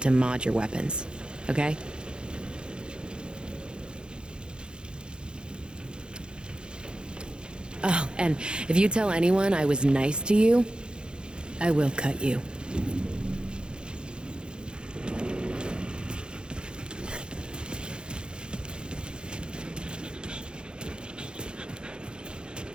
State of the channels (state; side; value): late; left; 0.050 ms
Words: to mod your weapons. Okay? Oh, and if you tell anyone I was nice to you, I will cut you.